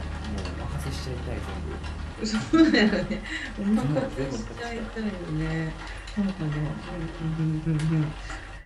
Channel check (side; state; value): both; identical; correlation 1.00